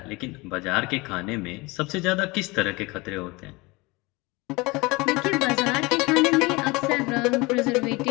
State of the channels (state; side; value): quieter; right; 24.2 dB